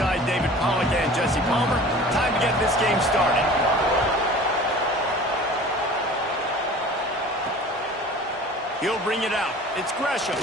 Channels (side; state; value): both; normal; correlation 0.43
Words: David Pollack and Jesse Palmer. Time to get this game started. He'll bring it out. It's Gresham.